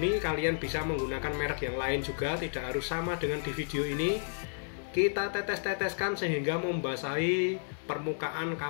Kalian bisa menggunakan merek yang lain juga, tidak harus sama dengan di video ini. Kita tetes-teteskan sehingga membasahi permukaan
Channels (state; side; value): silent; right; digital silence